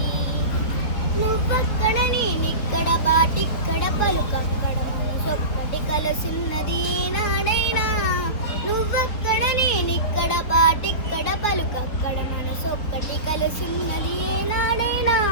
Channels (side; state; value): right; late; 4.4 ms